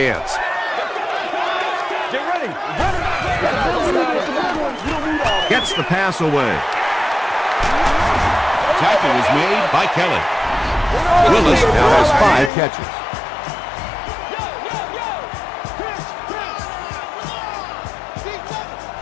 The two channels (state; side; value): drops out; right; at 12.5 s